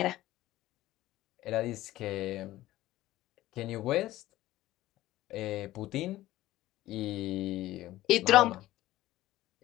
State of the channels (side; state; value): right; quieter; 15.8 dB